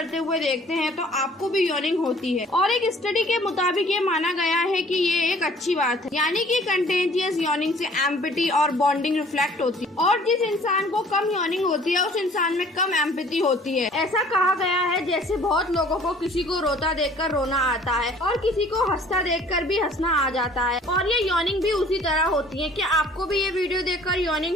हुए देखते हैं तो आपको भी यॉनिंग होती है। और एक स्टडी के मुताबिक ये माना गया है कि ये एक अच्छी बात है, यानी कि कंटेजियस यॉनिंग से एम्पैथी और बॉन्डिंग रिफ्लेक्ट होती है और जिस इंसान को कम यॉनिंग होती है उस इंसान में कम एम्पैथी होती है। ऐसा कहा गया है जैसे बहुत लोगों को किसी को रोता देखकर रोना आता है और किसी को हंसता देखकर भी हंसना आ जाता है, और ये यॉनिंग भी उसी तरह होती है। क्या आपको भी ये वीडियो देखकर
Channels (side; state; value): both; normal; correlation 0.53